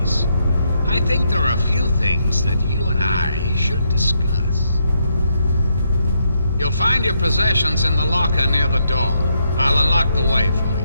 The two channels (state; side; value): inverted; both; correlation -0.77